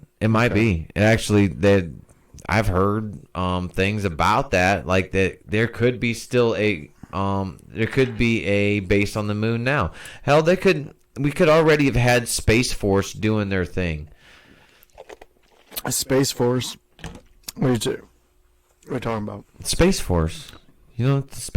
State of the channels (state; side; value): identical; both; correlation 1.00